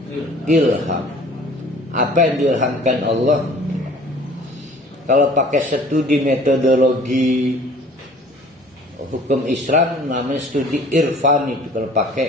ilham. Apa yang diilhamkan Allah? Kalau pakai studi metodologi hukum Islam namanya studi irfan itu. Kalau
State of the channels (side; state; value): both; normal; correlation 0.50